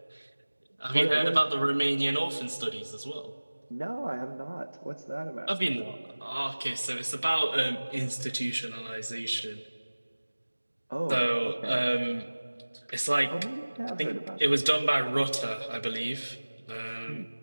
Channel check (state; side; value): inverted; both; correlation -1.00